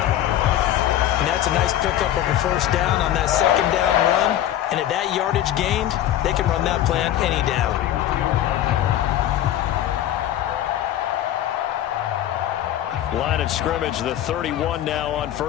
And that's a nice pickup of a 1st down on that 2nd down run. And at that yardage gained, they can run that play on any down. Line of scrimmage, the 31 now on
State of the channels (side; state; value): right; quieter; 12.1 dB